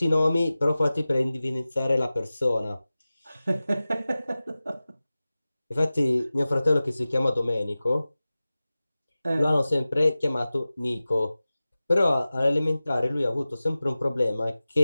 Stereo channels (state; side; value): inverted; both; correlation -0.97